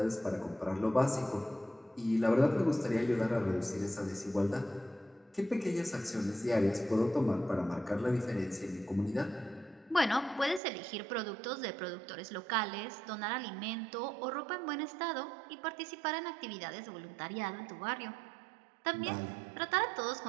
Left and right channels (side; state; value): left; drops out; at 10.6 s